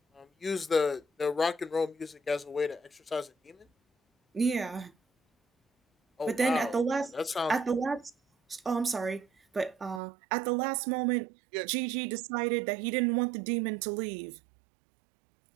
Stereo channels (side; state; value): left; drops out; at 10.0 s